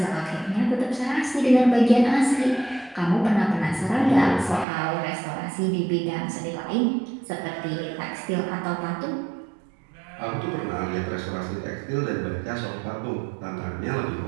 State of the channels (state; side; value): drops out; left; at 4.7 s